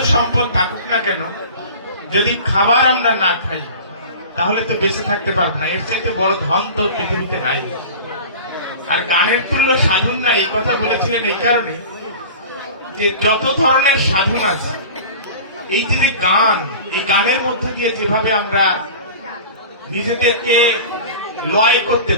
সম্পদ থাকুক না কেন, যদি খাবার আমরা না খাই তাহলে তো বেঁচে থাকতে পারবো না। এর চাইতে বড় ধন তো পৃথিবীতে নাই। আর গানের তুল্য সাধন না, এই কথা বলেছিলেন এই কারণে যে যত ধরনের সাধন আছে, এই যে গান, এই গানের মধ্য দিয়ে যেভাবে আমরা নিজেদেরকে লয় করতে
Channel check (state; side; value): inverted; both; correlation -0.37